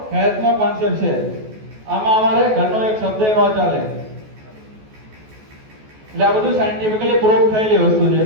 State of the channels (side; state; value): left; late; 14 ms